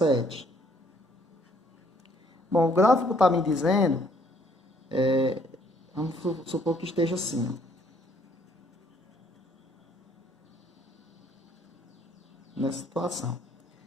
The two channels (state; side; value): normal; both; correlation 0.64